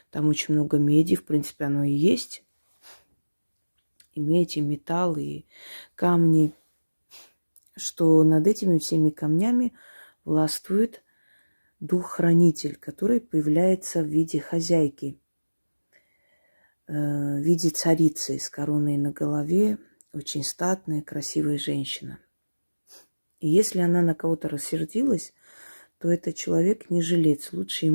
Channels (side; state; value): both; inverted; correlation -1.00